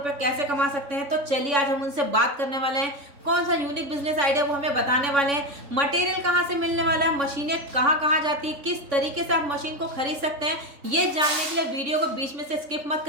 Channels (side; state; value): left; late; 3.6 ms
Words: कैसे कमा सकते हैं। तो चलिए आज हम उनसे बात करने वाले हैं, कौन सा यूनिक बिजनेस आइडिया वो हमें बताने वाले हैं, मटेरियल कहाँ से मिलने वाला है, मशीनें कहाँ कहाँ जाती है, किस तरीके से आप मशीन को खरीद सकते हैं। ये जानने के लिए वीडियो को बीच में से स्किप मत